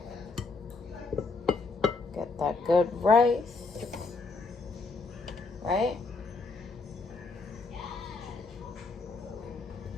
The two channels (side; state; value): right; quieter; 4.0 dB